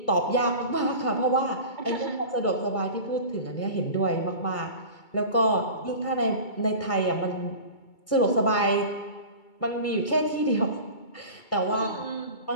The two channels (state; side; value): late; right; 2.3 ms